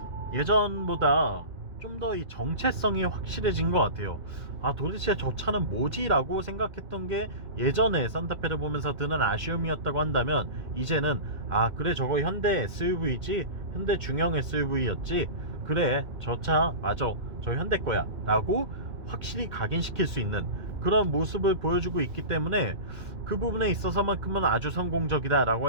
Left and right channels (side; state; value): left; late; 2.1 ms